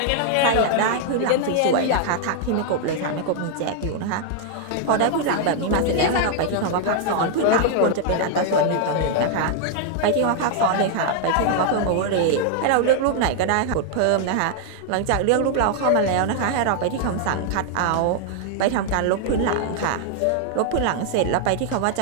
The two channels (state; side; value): different; both; correlation 0.00